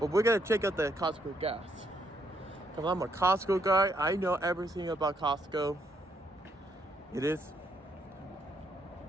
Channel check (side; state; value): both; normal; correlation 0.74